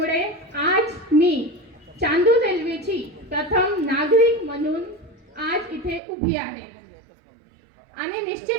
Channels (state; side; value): drops out; left; at 6.0 s